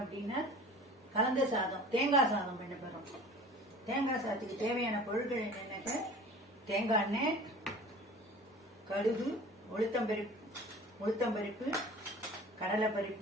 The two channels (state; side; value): normal; both; correlation 0.42